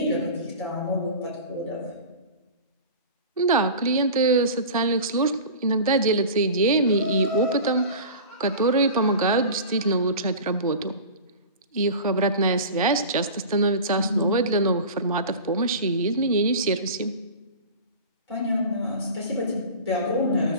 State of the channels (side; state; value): both; inverted; correlation -0.35